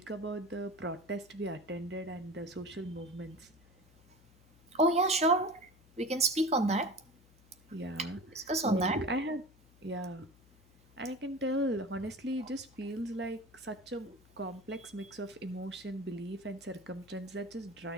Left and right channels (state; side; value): noise; left; hum, 27 dB below the sound